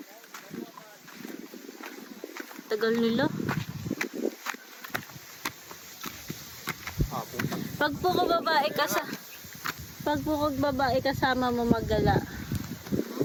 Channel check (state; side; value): identical; both; correlation 1.00